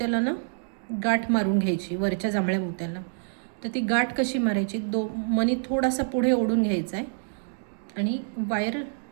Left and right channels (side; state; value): left; silent; digital silence